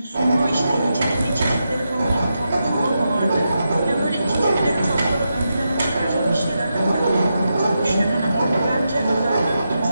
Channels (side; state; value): both; inverted; correlation -0.87